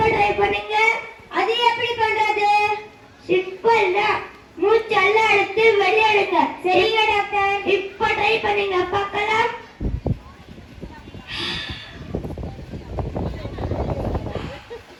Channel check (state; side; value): identical; both; correlation 1.00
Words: ட்ரை பண்ணுங்க. அது எப்படி பண்றது? சிம்பிள் தான். மூச்செல்லாம் எடுத்து வெளியெடுங்க. சரிங்க டாக்டர். இப்ப ட்ரை பண்ணுங்க பார்க்கலாம்.